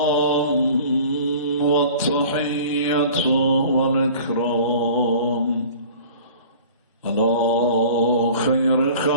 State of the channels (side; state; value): both; inverted; correlation -0.44